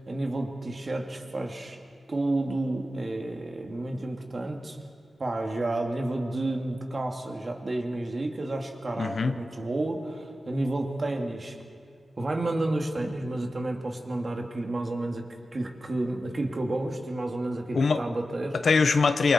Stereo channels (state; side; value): normal; both; correlation 0.92